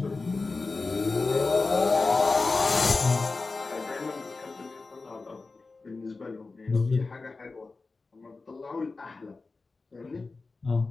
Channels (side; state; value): right; quieter; 3.8 dB